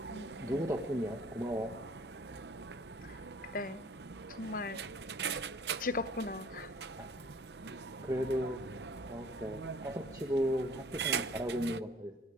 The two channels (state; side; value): normal; both; correlation 0.52